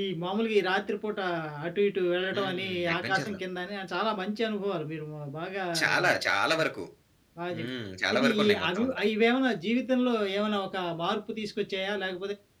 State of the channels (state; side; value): identical; both; correlation 1.00